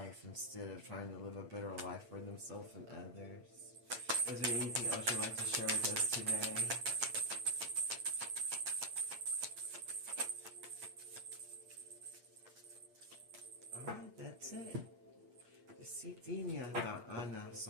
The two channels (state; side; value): late; left; 8.6 ms